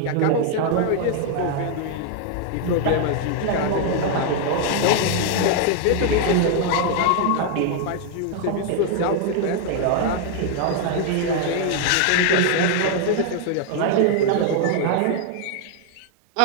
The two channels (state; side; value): different; both; correlation 0.00